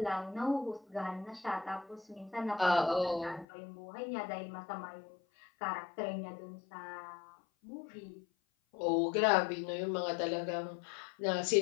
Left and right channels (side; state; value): right; drops out; at 3.5 s